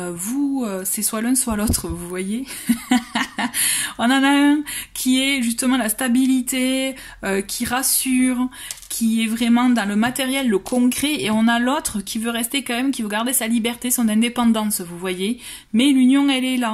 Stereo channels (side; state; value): both; identical; correlation 1.00